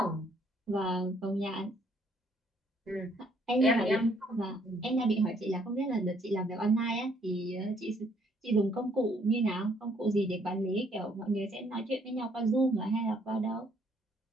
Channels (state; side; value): normal; both; correlation 0.66